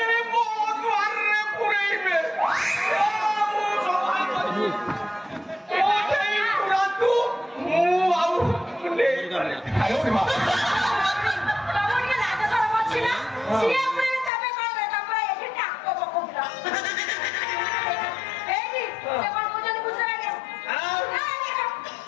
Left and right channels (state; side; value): drops out; right; at 14.3 s